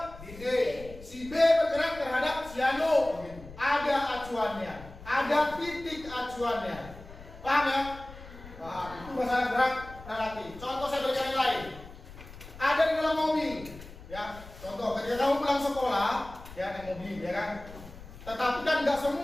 D, si B bergerak terhadap si Anu. Ada acuannya, ada titik acuannya. Paham ya? Nah, itu masalah gerak relatif. Contoh saya berikan yang lain. Ada di dalam mobil, ya. Contoh, ketika kamu pulang sekolah, ya naik mobil, ya kan. Tetapi kan nggak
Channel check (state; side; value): noise; left; rumble, 16 dB below the sound